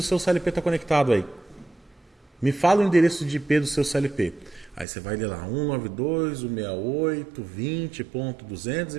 seu CLP está conectado aí. Me fala o endereço de IP do seu CLP. Aí você vai ler lá,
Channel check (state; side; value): drops out; left; at 4.9 s